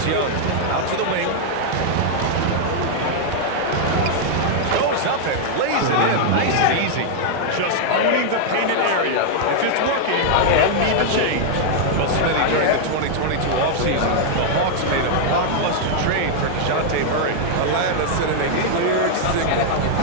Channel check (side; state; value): both; different; correlation -0.01